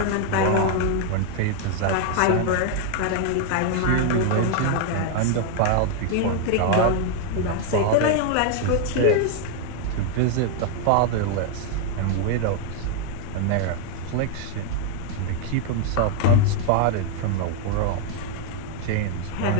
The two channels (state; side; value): different; both; correlation 0.00